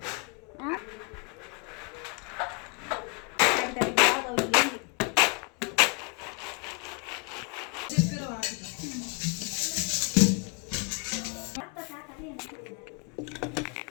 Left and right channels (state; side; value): quieter; right; 33.2 dB